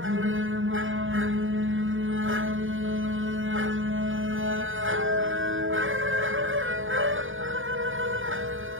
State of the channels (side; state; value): left; late; 0.58 ms